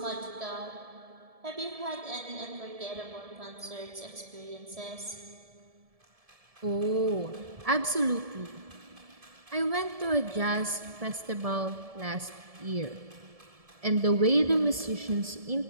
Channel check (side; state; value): left; late; 1.7 ms